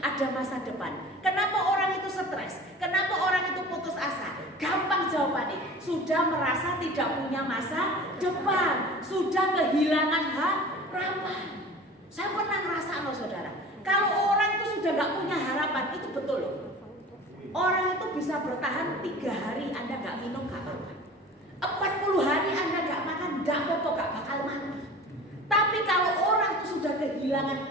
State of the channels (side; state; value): both; normal; correlation 0.39